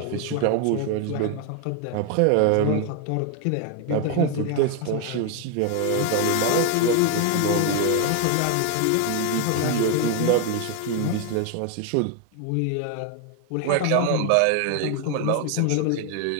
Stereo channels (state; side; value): different; both; correlation 0.01